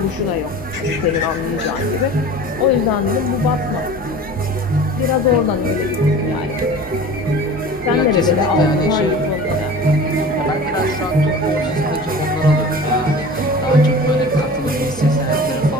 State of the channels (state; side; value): normal; both; correlation 0.39